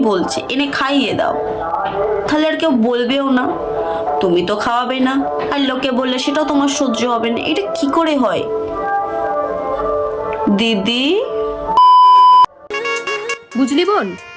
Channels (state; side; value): identical; both; correlation 1.00